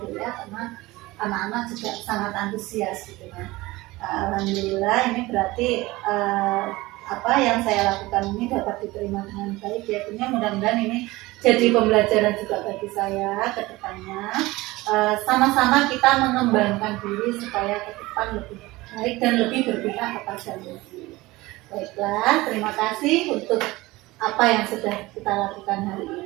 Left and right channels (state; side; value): quieter; left; 20.1 dB